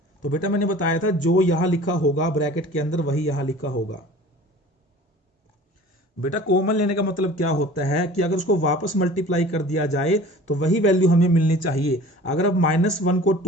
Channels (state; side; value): normal; both; correlation 0.44